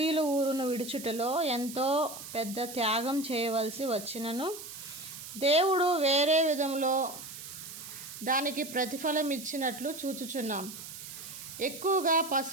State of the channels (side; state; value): right; noise; hiss, 11 dB below the sound